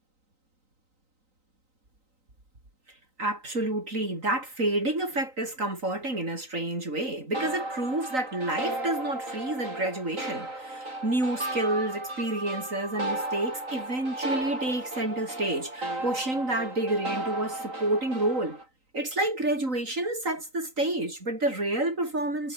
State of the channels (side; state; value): left; late; 3.9 ms